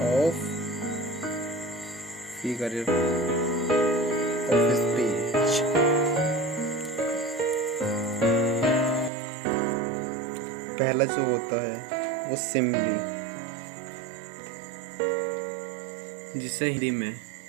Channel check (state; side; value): drops out; left; at 9.1 s